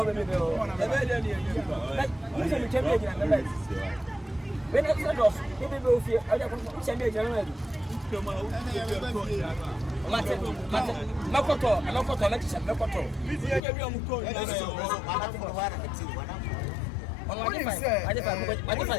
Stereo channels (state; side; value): drops out; right; at 13.6 s